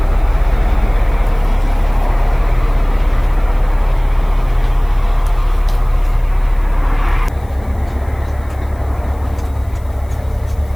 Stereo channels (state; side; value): noise; left; hiss, 29 dB below the sound